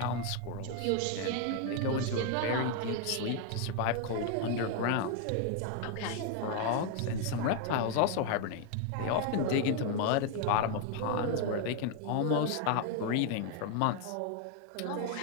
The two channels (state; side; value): different; both; correlation 0.00